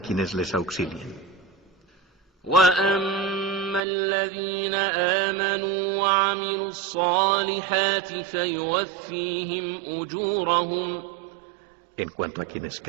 quienes les auxilien. وأما الذين آمنوا وعملوا الصالحات فيوفيهم أجورهم. En cuanto a quienes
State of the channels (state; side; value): drops out; left; at 3.8 s